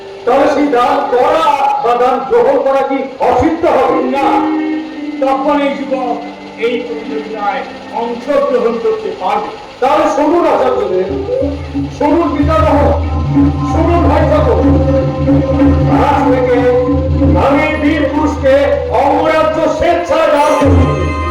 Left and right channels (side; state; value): both; identical; correlation 1.00